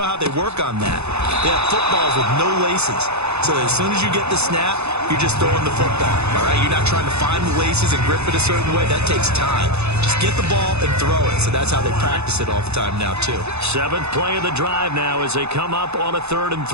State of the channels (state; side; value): late; left; 0.80 ms